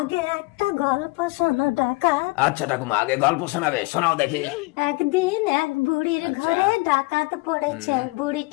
একটা গল্প শোনো ডাকাত। আচ্ছা ঠাকুমা, আগে গল্প শোনাবে, শোনাও দেখি। একদিন এক বুড়ির ঘরে ডাকাত পড়েছে।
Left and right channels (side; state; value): right; quieter; 25.3 dB